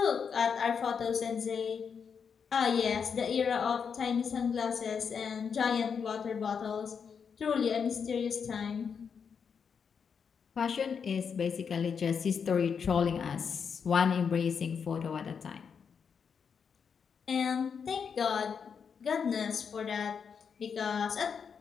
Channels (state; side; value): quieter; right; 6.5 dB